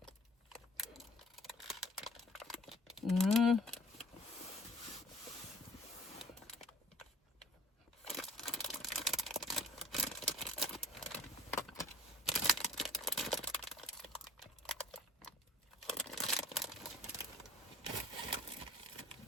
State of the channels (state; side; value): normal; both; correlation 0.49